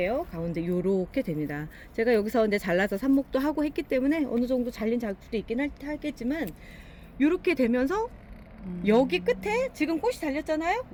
가운데 요렇게 됩니다. 제가 여기서 이제 잘라서 삽목도 하고 했기 때문에 어느 정도 잘린 자국도 있긴 하겠지만 요렇게 되면서 여기 끝에 지금 꽃이 달렸잖아요.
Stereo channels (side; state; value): both; identical; correlation 1.00